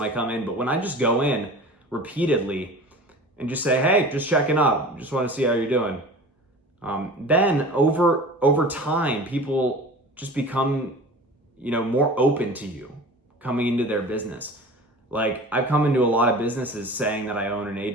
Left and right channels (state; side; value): normal; both; correlation 0.38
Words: I come in, but when I just go in repeatedly and just say, hey, just checking up, just want to see how you're doing. Then over time, people just become, more open to you coming into their business. Like, I've come into a lot of businesses saying that I own an